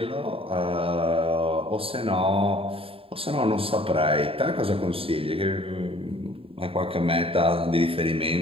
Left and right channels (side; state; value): left; late; 0.27 ms